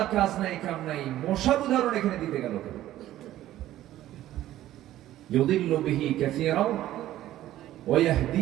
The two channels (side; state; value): left; quieter; 13.8 dB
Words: কাজ নাই কাম নাই, মশার উদাহরণ এখানে দিতে গেল কেন? ইউদিল্লু বিহি কাসীরান ওয়া